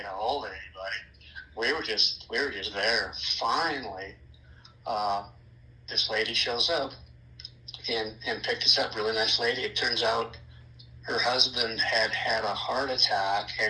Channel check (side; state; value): both; identical; correlation 1.00